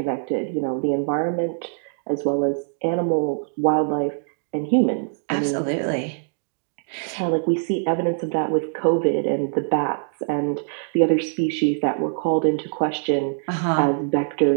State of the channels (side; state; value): left; silent; digital silence